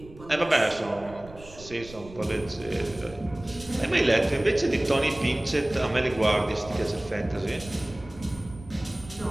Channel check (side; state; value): right; noise; rumble, 18 dB below the sound